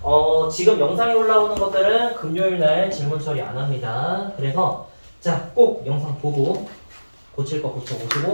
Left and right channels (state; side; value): inverted; both; correlation -1.00